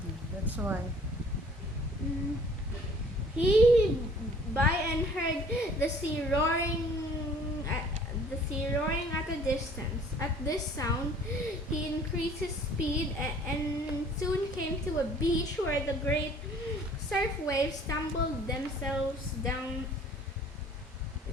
That's why. He by and heard the sea roaring at a distance. At this sound, he increased his speed and soon came to a beach where the great surf waves tumbled themselves down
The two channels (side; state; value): both; normal; correlation 0.53